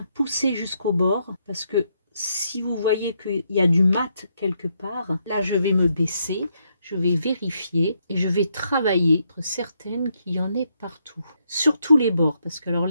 poussé jusqu'au bord. Parce que si vous voyez qu'il y a du mat quelque part, là, je vais me baisser. Je vais vérifier et je vais travailler, être certaine qu'il y en ait partout. Surtout les bords, parce que alors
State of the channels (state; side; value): inverted; both; correlation -0.77